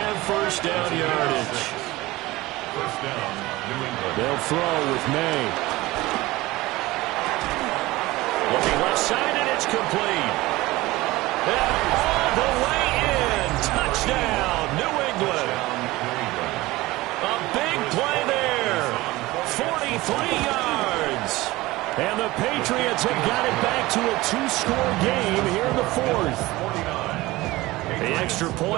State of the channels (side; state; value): left; quieter; 19.4 dB